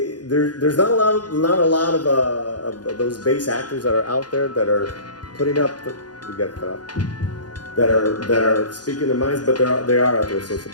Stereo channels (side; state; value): right; late; 0.69 ms